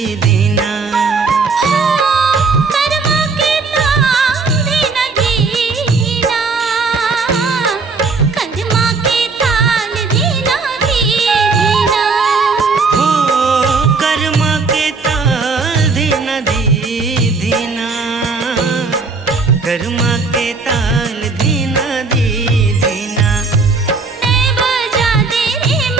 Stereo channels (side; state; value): left; quieter; 4.3 dB